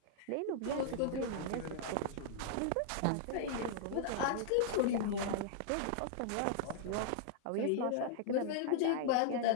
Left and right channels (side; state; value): both; different; correlation -0.01